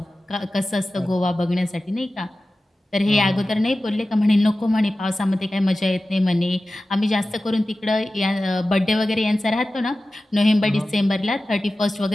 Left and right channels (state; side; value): normal; both; correlation 0.95